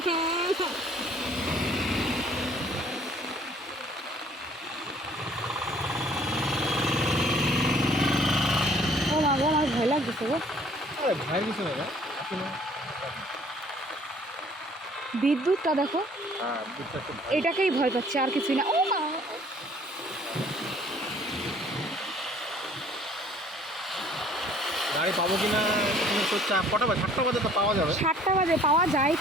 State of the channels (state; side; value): normal; both; correlation 0.57